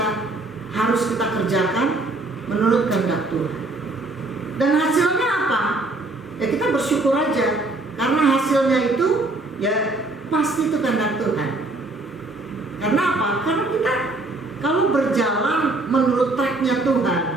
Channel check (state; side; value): quieter; left; 3.1 dB